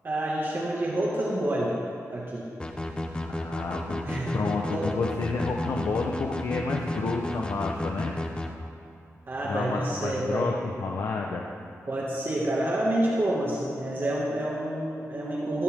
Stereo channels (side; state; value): both; normal; correlation 0.85